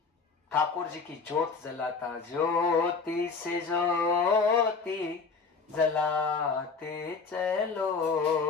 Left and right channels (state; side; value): quieter; right; 4.8 dB